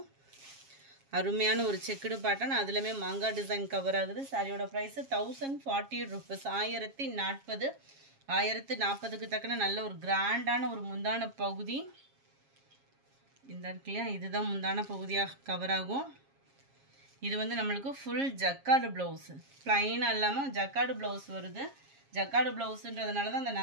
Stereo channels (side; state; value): left; late; 7.3 ms